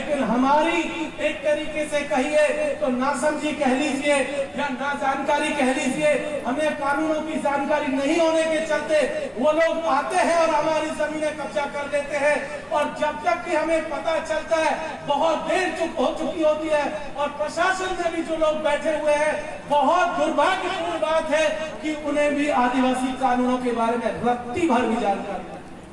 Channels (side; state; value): both; identical; correlation 1.00